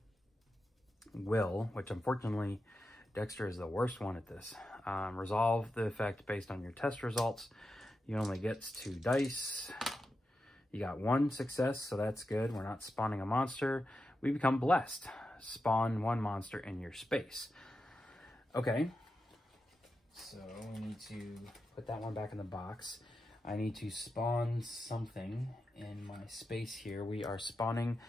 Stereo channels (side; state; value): both; normal; correlation 0.89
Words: will, which unfortunately Dexter is the worst one at this. Resolve the effect based on your test results. You only get 2 dice. You got 1 success, so that's good. We're not spawning a monster. We become blessed. Spawn 1 monster in your space. Okay. So we need to put that one back in the box. I need to spawn something in my space here. We are spawning